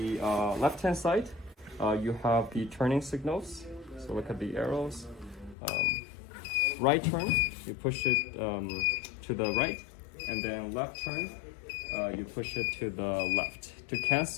left-hand side, you have the turning signals. So look at the arrows. Right turn, you push it to the right, and then left turn, you push it to the left. To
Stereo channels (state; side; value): drops out; right; at 5.6 s